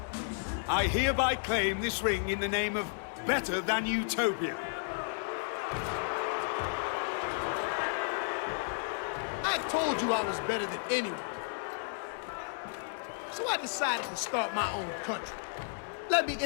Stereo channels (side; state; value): right; silent; 56 dB below the other